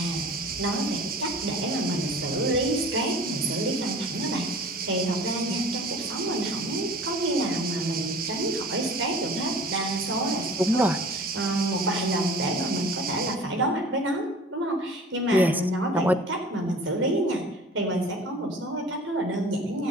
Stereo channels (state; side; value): normal; both; correlation 0.44